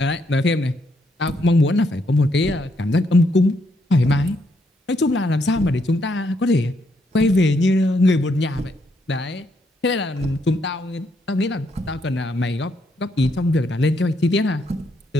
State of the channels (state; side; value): normal; both; correlation 0.75